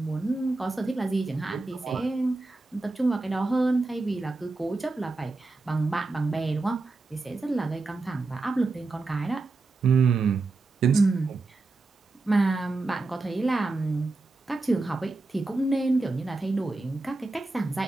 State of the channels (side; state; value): left; quieter; 3.4 dB